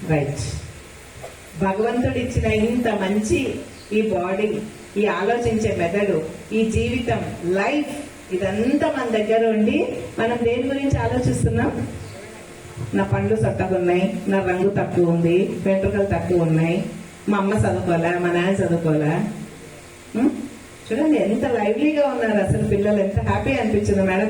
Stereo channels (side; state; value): both; identical; correlation 1.00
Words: రైట్. భగవంతుడు ఇచ్చిన ఇంత మంచి ఈ బాడీ, ఈ ఆలోచించే మెదడు, ఈ జీవితం, లైఫ్, ఇదంతా మన దగ్గర ఉండి మనం దేని గురించి ఆలోచిస్తున్నాం? నా పండ్లు చక్కగా ఉన్నాయి, నా రంగు తక్కువ ఉంది, వెంట్రుకలు తక్కువ ఉన్నాయి, మా అమ్మ చదువుకోలే, మా నాన్న చదువుకోలే. చూడండి ఎంత లైవ్లీగా ఉన్నారు అసలు పిల్లలు. ఎంత హ్యాపీ అనిపించింది.